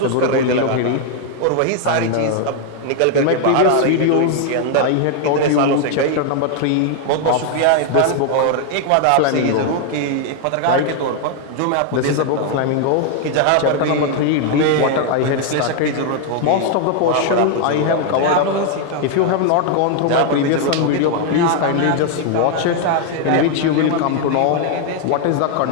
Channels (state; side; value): different; both; correlation 0.00